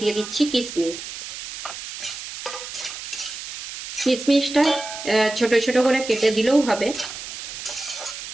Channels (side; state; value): right; noise; hiss, 10 dB below the sound